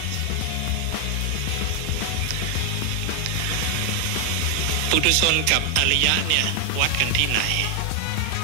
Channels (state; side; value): different; both; correlation 0.00